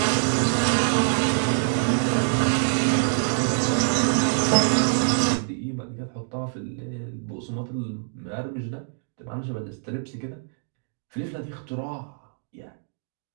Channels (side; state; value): left; silent; digital silence